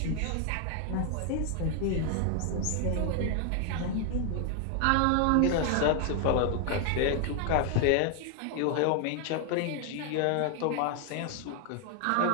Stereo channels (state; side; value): different; both; correlation 0.00